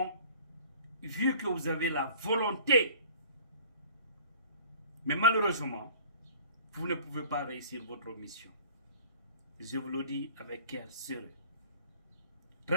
vu que vous avez la volonté, mais malheureusement, vous ne pouvez pas réussir votre mission. Je vous le dis avec cœur serré,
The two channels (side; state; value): both; inverted; correlation -0.48